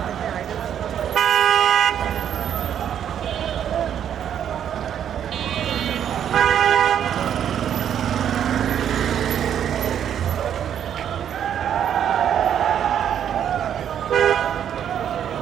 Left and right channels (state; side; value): quieter; left; 9.4 dB